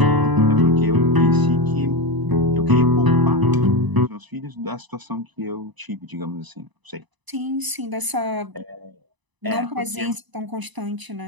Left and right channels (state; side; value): late; left; 1.0 ms